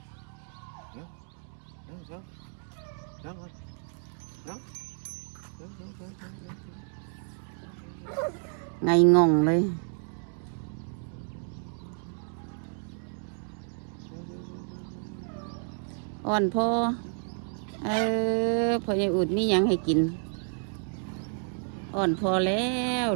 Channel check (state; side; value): silent; left; 55 dB below the other